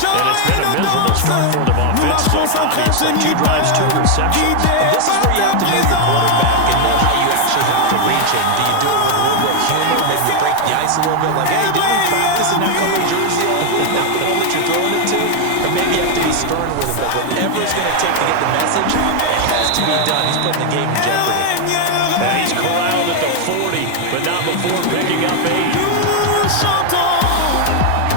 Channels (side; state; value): both; different; correlation 0.01